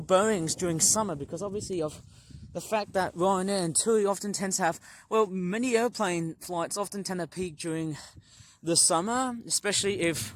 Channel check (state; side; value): identical; both; correlation 1.00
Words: Boeings during summer because obviously of the fact that Ryanair and TUI often tend to have, well, many airplane flights often tend to peak during the summer, especially if